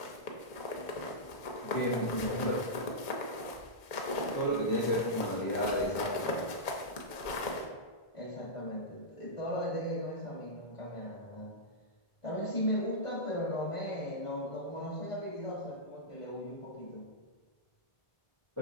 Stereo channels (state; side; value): late; right; 2.1 ms